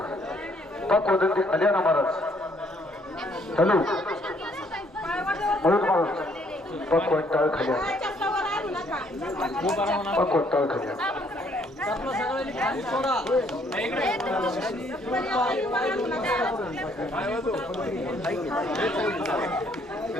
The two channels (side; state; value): both; normal; correlation 0.66